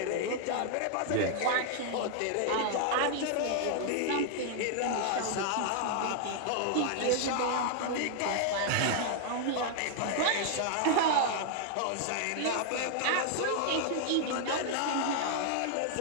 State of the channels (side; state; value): both; different; correlation 0.00